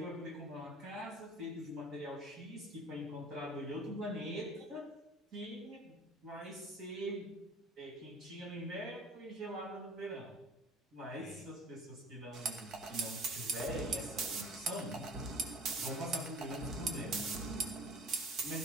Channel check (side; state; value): both; normal; correlation 0.46